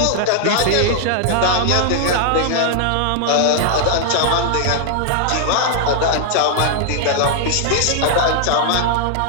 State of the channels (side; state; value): both; different; correlation 0.00